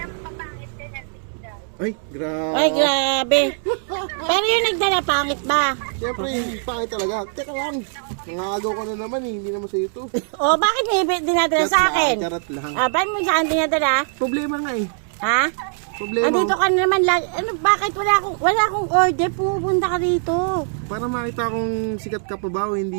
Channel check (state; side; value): silent; left; 65 dB below the other